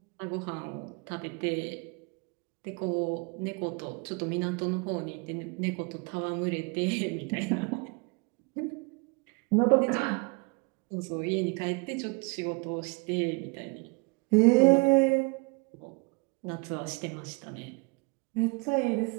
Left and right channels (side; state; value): left; quieter; 30.4 dB